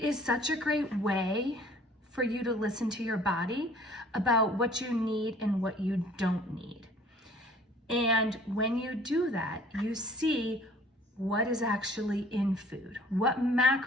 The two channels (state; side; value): normal; both; correlation 0.53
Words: is such a great way for you to listen to your body about what you need and what you don't need. And when you do that, you see what is actually in food, what